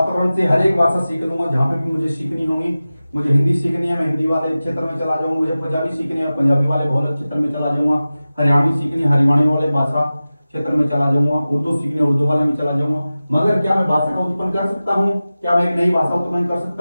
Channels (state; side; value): inverted; both; correlation -0.95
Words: से हर एक भाषा सीख लूंगा, जहां पे भी मुझे सीखनी होगी। मुझे हिंदी सीखनी है, मैं हिंदी वाले क्षेत्र में चला जाऊंगा। मुझे पंजाबी सीखनी है, पंजाबी वाले बहुल क्षेत्र में चला जाऊंगा। हरियाणवी सीखनी, हरियाणवी वाले भाषा क्षेत्र में चला जाऊंगा। उर्दू सीखनी, उर्दू वाले में चला जाऊंगा। मगर क्या मैं भाषा का उत्पन्न कर सकता हूँ, क्या मैं एक नई भाषा उत्पन्न कर